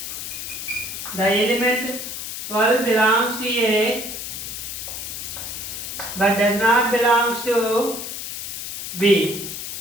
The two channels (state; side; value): noise; left; hiss, 7 dB below the sound